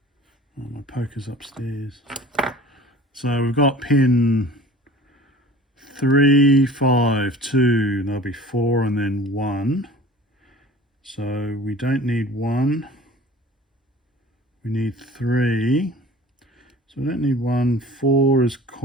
oh, my poker's upstairs. So we've got pin 3, 5, 2, there'll be 4 and then 1. So we don't need 1. We need 3. So we don't need 1. 4 is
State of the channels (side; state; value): both; normal; correlation 0.44